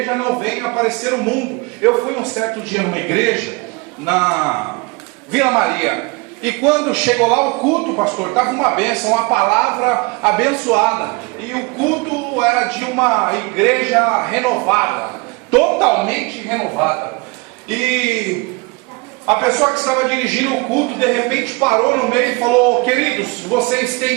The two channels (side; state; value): left; quieter; 28.0 dB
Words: não venha aparecer o mundo. Eu fui um certo dia numa igreja, na Vila Maria, e quando chegou lá o culto, pastor, estava uma bênção, uma palavra abençoada, e o culto era de uma igreja renovada, totalmente renovada. E a pessoa que estava dirigindo o culto de repente parou no meio e falou: queridos, vocês